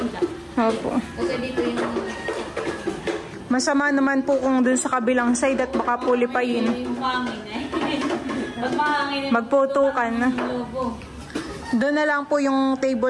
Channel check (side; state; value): both; identical; correlation 1.00